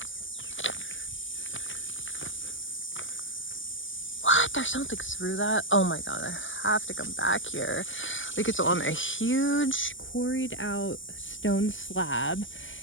What? there's something through that. Oh my god, I have to come back here. Like, it's on a huge quarried out stone slab,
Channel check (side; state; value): right; late; 0.56 ms